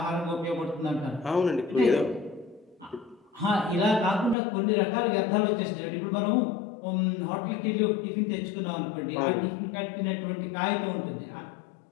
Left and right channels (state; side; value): drops out; right; at 4.4 s